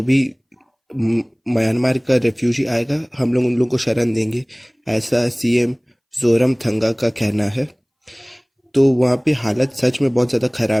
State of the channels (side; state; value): both; identical; correlation 1.00